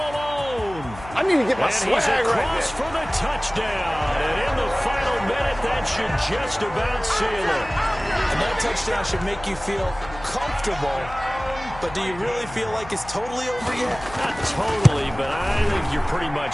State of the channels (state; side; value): noise; left; hum, 16 dB below the sound